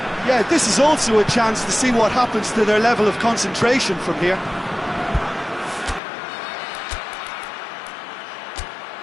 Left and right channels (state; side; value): drops out; right; at 6.0 s